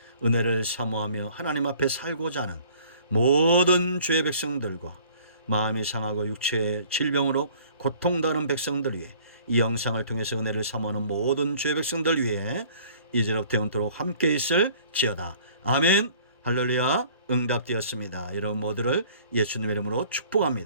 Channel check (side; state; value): both; inverted; correlation -0.53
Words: 은혜를 사모하며 하나님 앞에 살고자 하는 모든 주의 백성들과 마음이 상하고 육체의 질병으로 고통당하는 백성들 위해, 이 영상을 통해서 은혜를 사모하는 모든 주의 백성들 위해 이제로부터 영원토록 함께 있을지어다. 아멘. 할렐루야. 응답되었습니다. 여러분 모두를 예수님의 이름으로